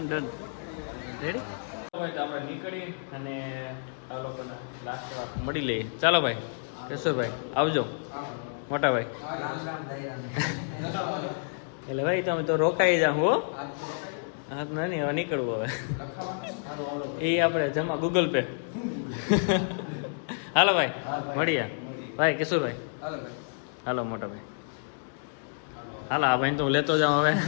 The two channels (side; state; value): right; silent; digital silence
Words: રેડી ભાઈ તો આપણે નીકળી અને આ લોકોના લાસ્ટ વાર મળી લઈએ ચાલો ભાઈ કેશોરભાઈ આવજો મોટા ભાઈ એટલે ભાઈ તમે તો રોકાઈ જાઓ હો હા તો નહીં હવે નીકળવું હવે એ આપણે જમા ગૂગલ પે હાલો ભાઈ મળીએ ભાઈ કિશોરભાઈ હાલો મોટા ભાઈ હાલો આ ભાઈ તો હું લેતો જાઉં હવે